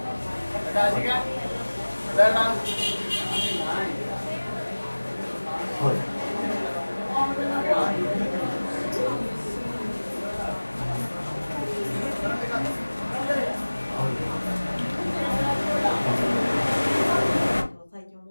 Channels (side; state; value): both; inverted; correlation -1.00